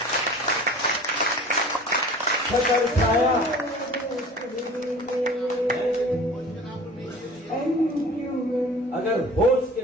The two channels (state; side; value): normal; both; correlation 0.43